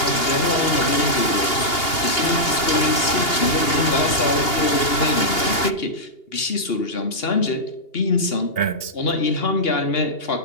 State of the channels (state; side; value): late; right; 2.8 ms